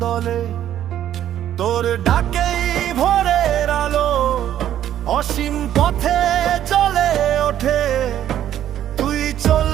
দলে। তোর ডাকেই ভোরের আলো অসীম পথে চলে ওঠে। তুই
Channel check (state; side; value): quieter; left; 11.3 dB